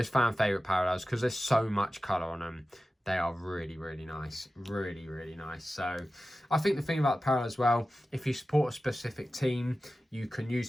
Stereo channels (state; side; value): normal; both; correlation 0.95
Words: fan favourite parallels, because there's so much colour on them, they are really, really nice. Really, really nice. So I think the thing about the parallel as well, if you support a specific team, you can